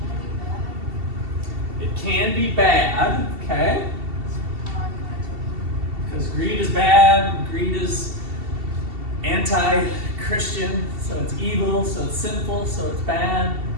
It can be bad, okay? Because greed is bad, greed is anti-Christian, so it's evil, so it's sinful, so it's bad.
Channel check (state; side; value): late; left; 2.7 ms